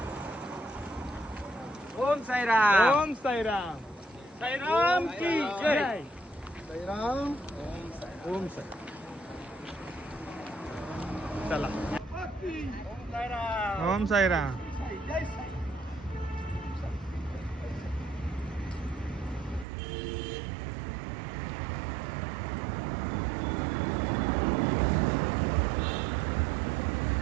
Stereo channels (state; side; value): drops out; left; at 19.7 s